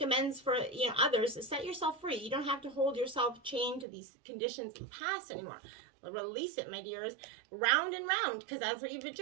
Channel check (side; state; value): left; drops out; at 3.9 s